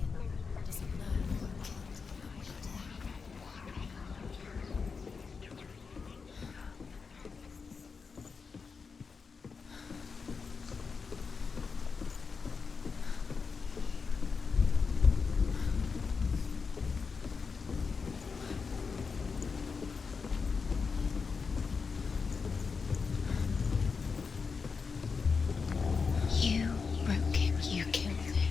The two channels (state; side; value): quieter; right; 5.1 dB